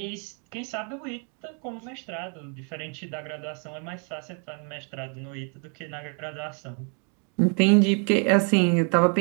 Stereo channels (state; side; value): quieter; left; 39.3 dB